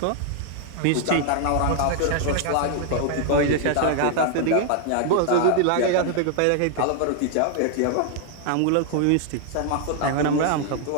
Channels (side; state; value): both; different; correlation 0.00